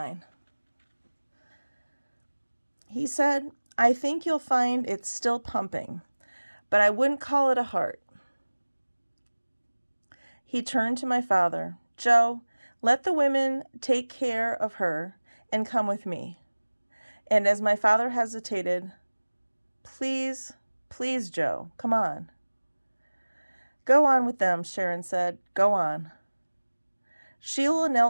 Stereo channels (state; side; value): inverted; both; correlation -1.00